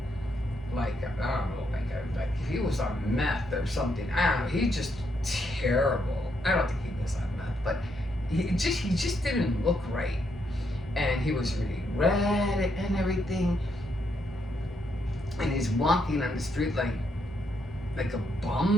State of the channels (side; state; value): both; normal; correlation 0.77